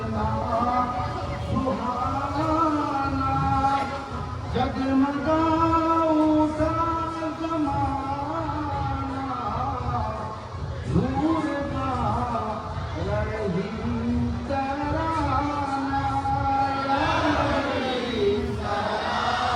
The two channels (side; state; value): both; identical; correlation 1.00